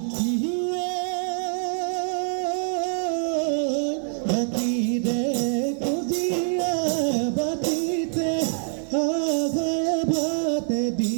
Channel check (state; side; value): silent; left; 55 dB below the other